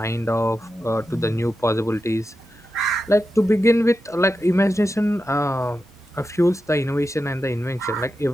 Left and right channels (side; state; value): both; normal; correlation 0.90